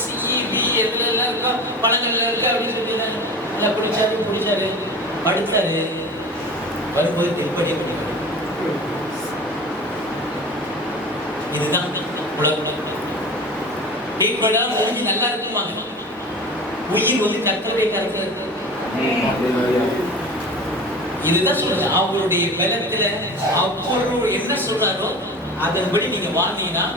சி, பி எதுல எல்லாம் இருக்கோ பழங்கள்ல இருக்கு அப்படின்னு சொல்லிட்டாங்க. நல்லா குடிச்சாரு படுத்தாரு. வரும்போது திருப்பதியை பண்ணிடுறாரு. இதுதான் உலகம். டீப்பெல்லாம் முடிஞ்சு நல்லா இருக்குமாங்க. உயிர் வந்து கர்த்தருடைய கருத்துல இருக்கு. இதுதான் சொல்றது. அவருடைய பலத்துல அவர் என்ன சொல்றாரோ அதன்படி நீங்க வாழ்ந்தீங்கன்னா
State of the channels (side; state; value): both; normal; correlation 0.35